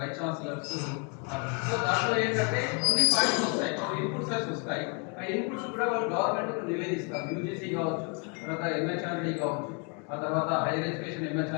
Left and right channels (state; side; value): quieter; right; 34.9 dB